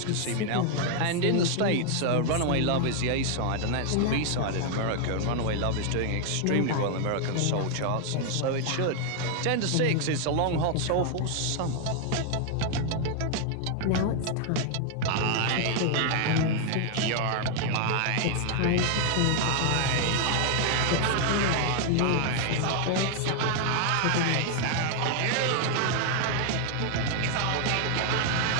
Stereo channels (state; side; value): different; both; correlation 0.00